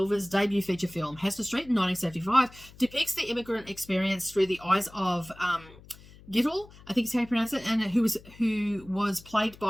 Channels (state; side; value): noise; left; hum, 22 dB below the sound